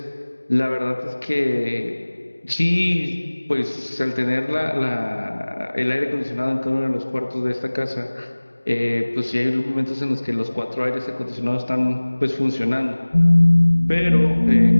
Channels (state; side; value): inverted; both; correlation -1.00